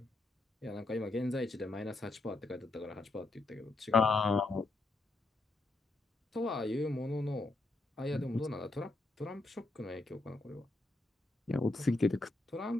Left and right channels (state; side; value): quieter; right; 3.0 dB